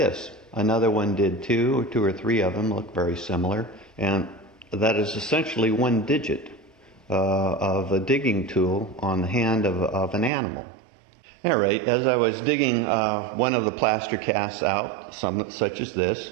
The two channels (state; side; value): drops out; left; at 10.3 s